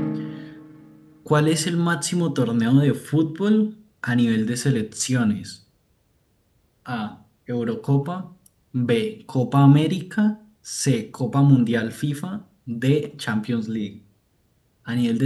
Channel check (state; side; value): identical; both; correlation 1.00